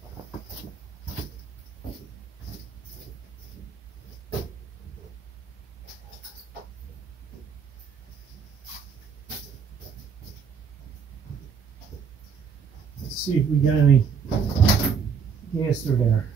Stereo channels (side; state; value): left; quieter; 6.3 dB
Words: Let's see if we got any gas through there.